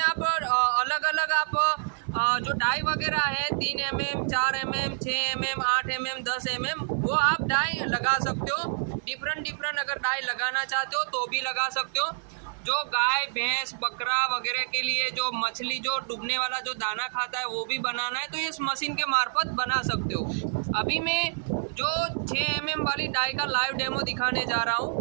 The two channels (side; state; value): left; silent; 55 dB below the other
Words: आप अलग अलग आप जो डाई वगैरह है 3 mm, 4 mm, 6 mm, 8 mm, 10 mm वो आप डाई लगा सकते हो। डिफरेंट अगर डाई लगाना चाहते हो तो भी लगा सकते हो। जो गाय भैंस बकरा वगैरह के लिए जो मछली जो डूबने वाला जो दाना खाता है वो भी बनाना है तो इस मशीन के मार्फत बना सकते हो। अभी मैं जो 6 mm वाली डाई का लाइव डेमो दिखाने जा रहा